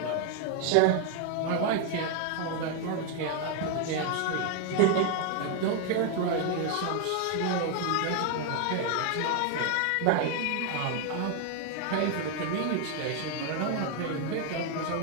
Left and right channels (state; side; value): different; both; correlation 0.01